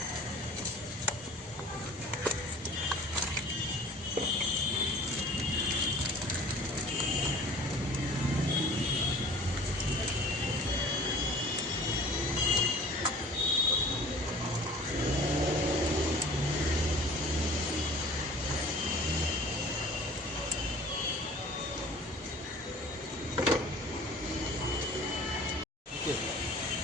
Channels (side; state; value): both; normal; correlation 0.47